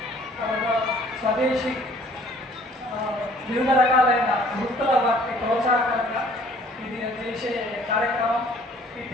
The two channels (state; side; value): normal; both; correlation 0.56